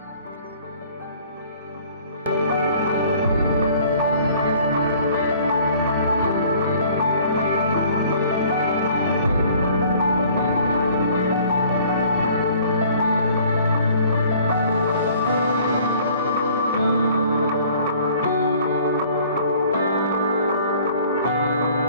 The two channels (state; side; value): inverted; both; correlation -0.54